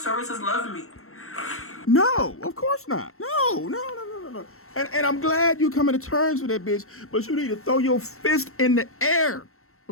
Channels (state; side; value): late; right; 0.63 ms